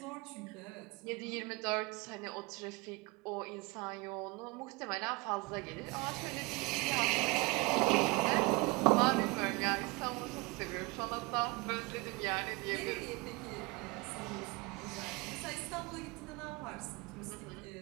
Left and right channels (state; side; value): quieter; left; 24.6 dB